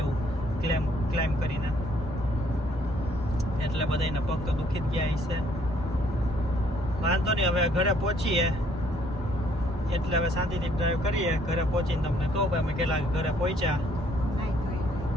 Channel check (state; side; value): normal; both; correlation 0.65